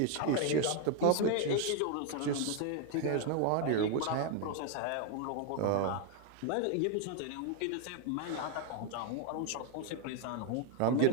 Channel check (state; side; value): different; both; correlation 0.01